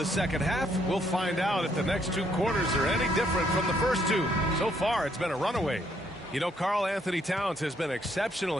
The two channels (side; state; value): both; normal; correlation 0.70